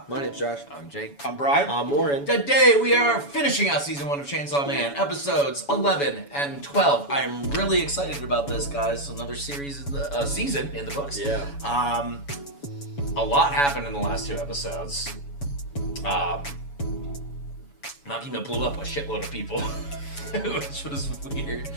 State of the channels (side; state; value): right; late; 7.1 ms